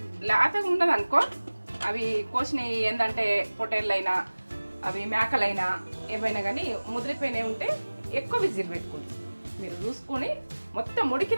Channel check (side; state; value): both; inverted; correlation -1.00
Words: లేతగా ఉండదు అనుకో, అవి కోసినవి ఏంటంటే పొటేళ్ళైనా అవి మేకలైనా ఏమైనా కానీ ముదిరిపోయినవి ఉంటే ఎక్కువ విజిల్ పెట్టుకోండి. మీరు చూసుకొని మొత్తం